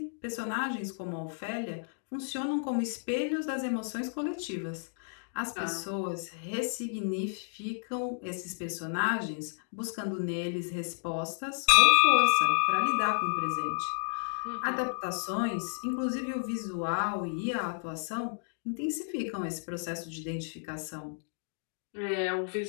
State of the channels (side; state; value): right; silent; digital silence